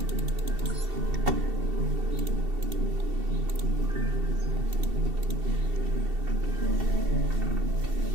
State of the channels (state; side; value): late; left; 2.7 ms